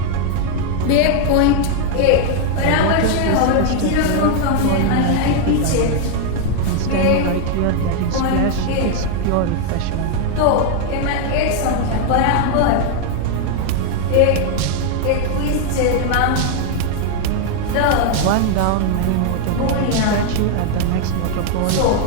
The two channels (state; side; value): different; both; correlation 0.00